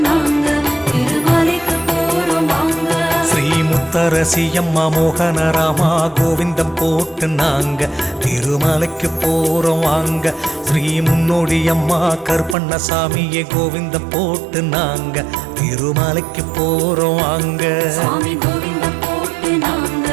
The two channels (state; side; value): drops out; left; at 12.6 s